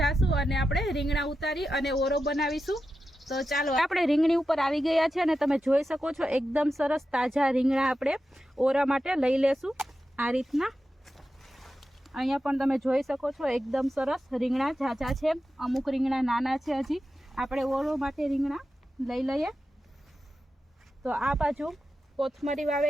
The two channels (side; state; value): both; normal; correlation 0.91